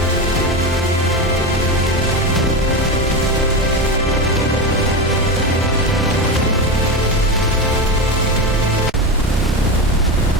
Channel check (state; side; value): normal; both; correlation 0.18